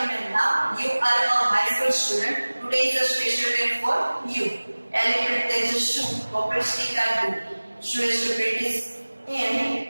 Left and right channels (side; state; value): both; inverted; correlation -1.00